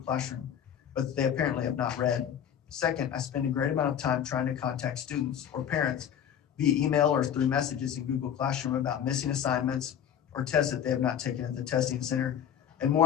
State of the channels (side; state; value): right; quieter; 9.2 dB